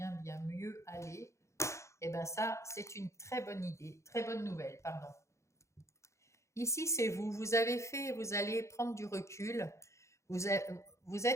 bien mieux aller. Et bien ça, c'est une très bonne idée, très bonne nouvelle, pardon. Ici, c'est vous allez prendre du recul, vous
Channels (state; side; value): late; right; 0.14 ms